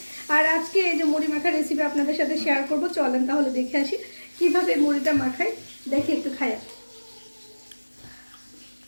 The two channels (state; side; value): inverted; both; correlation -1.00